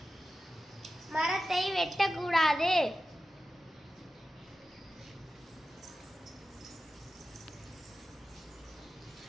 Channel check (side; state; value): both; normal; correlation 0.93